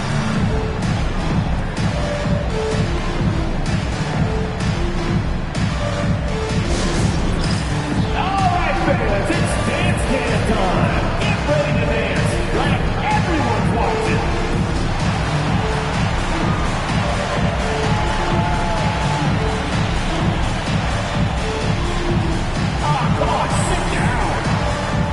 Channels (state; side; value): identical; both; correlation 1.00